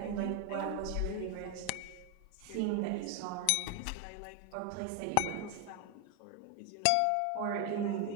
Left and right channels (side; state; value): both; different; correlation 0.01